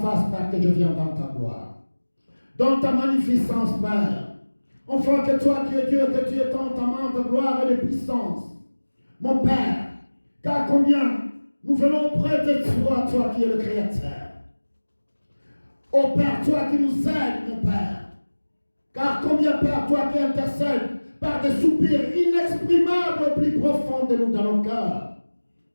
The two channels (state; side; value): inverted; both; correlation -1.00